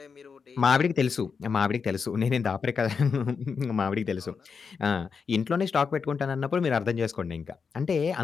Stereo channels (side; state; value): right; quieter; 5.7 dB